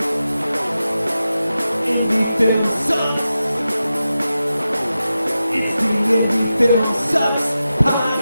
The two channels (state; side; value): inverted; both; correlation -0.92